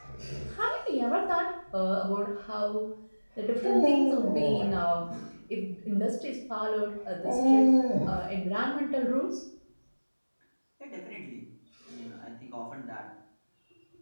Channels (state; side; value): inverted; both; correlation -1.00